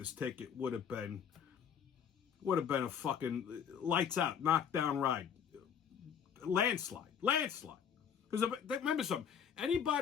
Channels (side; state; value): right; quieter; 7.8 dB